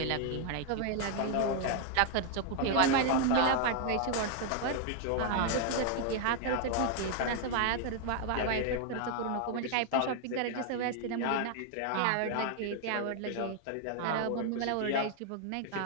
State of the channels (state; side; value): different; both; correlation 0.00